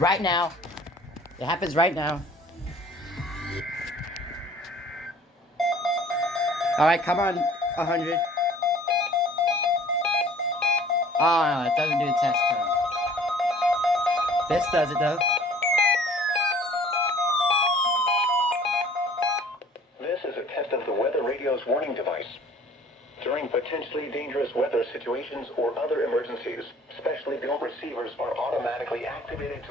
now. It happens right now. Alright, come on, 100. Oh, no, it doesn't do the test tone. This does it, though. This is a test of the weather radio's warning device. During potentially dangerous weather situations or other emergencies, specially built receivers are automatically activated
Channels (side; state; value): both; normal; correlation 0.51